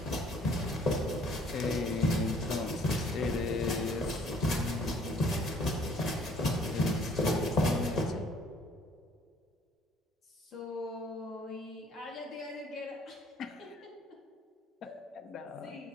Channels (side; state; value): both; normal; correlation 0.59